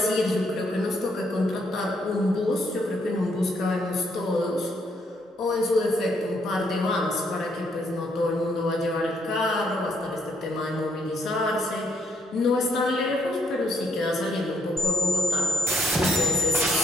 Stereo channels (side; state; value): both; normal; correlation 0.70